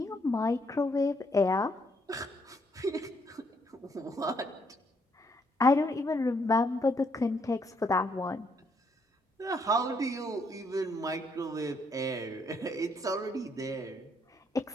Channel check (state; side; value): normal; both; correlation 0.72